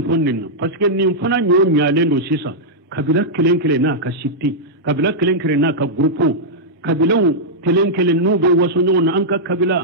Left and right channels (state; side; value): normal; both; correlation -0.08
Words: fonnin parce que nin fana nyo nyale ndo sisa kabila kelenkele na ka sitti kabila kelenkele na ka grupo kabilaw kelenkele no be waso nyon an ka kabila